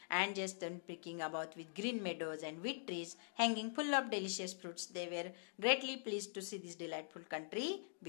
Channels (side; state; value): right; silent; digital silence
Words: and just pricking about with green meadows and wheat trees hanging full of delicious fruits. They were greatly pleased to see this delightful country